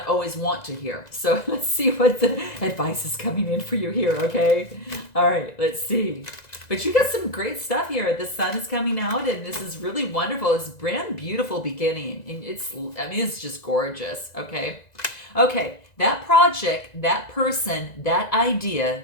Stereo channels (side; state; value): right; late; 2.0 ms